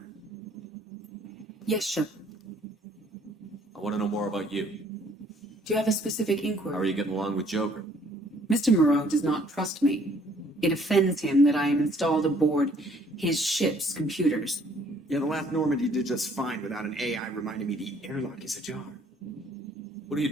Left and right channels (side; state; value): both; normal; correlation 0.61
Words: Yes, Shepard. I want to know more about you. Do you have a specific How are inquiry? you getting along with Joker? Mr. Moreau does not trust me. It offends him that I am installed aboard his ship's computers. Yeah, the last Normandy did just fine without an AI reminding me the airlock is ajar. What do you